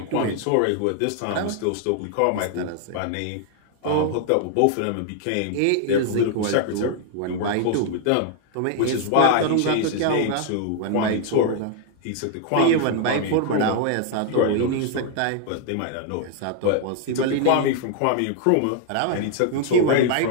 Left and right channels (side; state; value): both; different; correlation 0.00